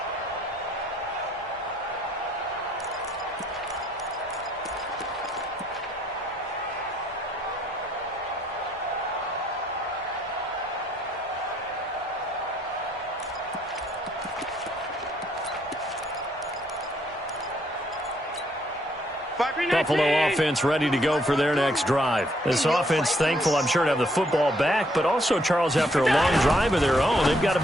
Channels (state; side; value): normal; both; correlation 0.69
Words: Buffalo offense ready to go for their next drive. This offense thankful, I'm sure, to have the football back, but also, Charles, after a long drive of their own, they've got to